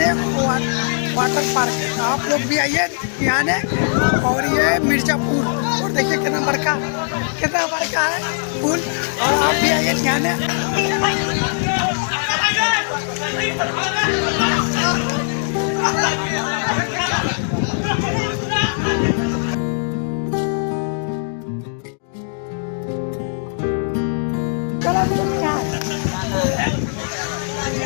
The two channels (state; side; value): silent; right; digital silence